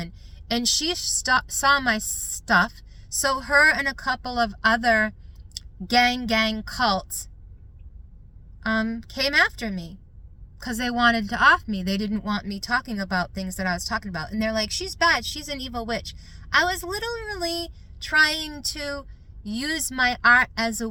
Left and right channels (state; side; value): identical; both; correlation 1.00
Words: And she saw my stuff, so her and a couple of other gang cults came after me because they wanted to off me. They didn't want me talking about things that I was talking about. And they're like, she's bad, she's an evil witch. I was literally trying to use my art as a